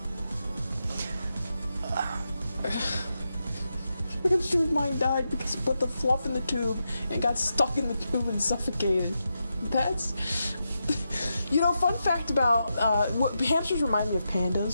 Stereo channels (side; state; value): both; inverted; correlation -0.87